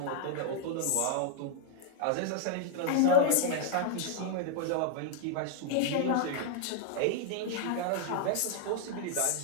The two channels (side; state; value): both; different; correlation -0.01